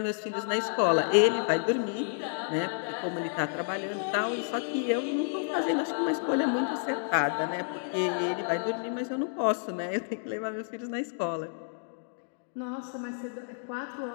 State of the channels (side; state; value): right; silent; digital silence